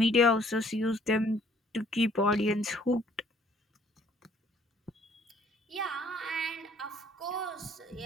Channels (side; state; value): both; normal; correlation 0.60